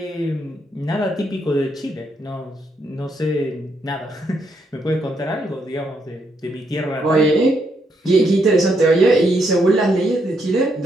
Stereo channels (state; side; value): normal; both; correlation 0.76